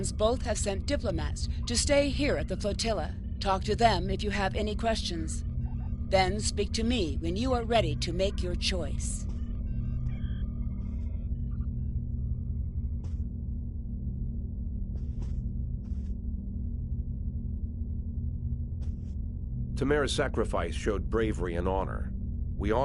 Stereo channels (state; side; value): identical; both; correlation 1.00